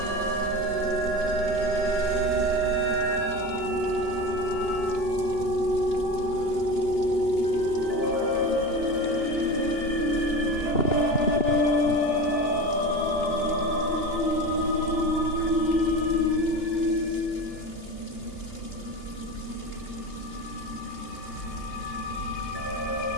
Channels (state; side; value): late; right; 2.9 ms